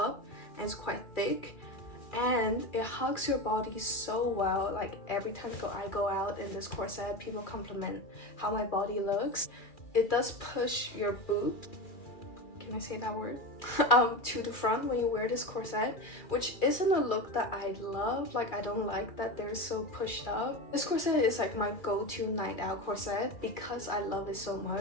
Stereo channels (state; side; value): late; right; 2.4 ms